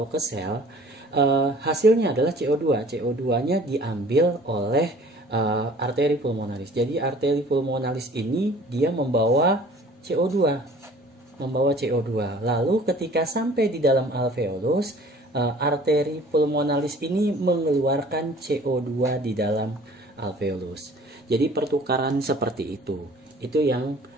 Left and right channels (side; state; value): both; normal; correlation 0.50